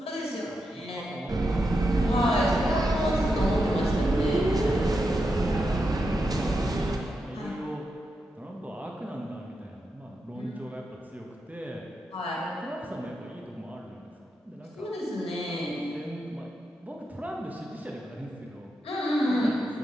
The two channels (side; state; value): both; normal; correlation 0.86